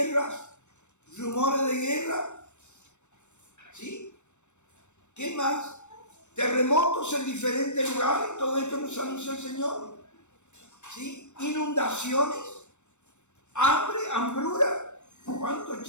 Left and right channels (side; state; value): right; late; 0.84 ms